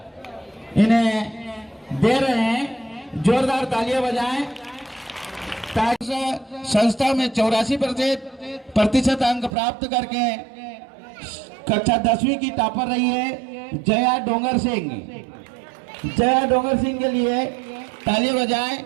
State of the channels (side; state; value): left; drops out; at 9.6 s